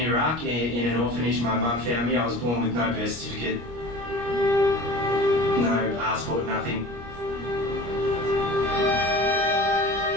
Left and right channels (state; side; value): late; left; 25 ms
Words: in an orphanage, my mum found me. I was born with no birth certificate, no passport, nothing.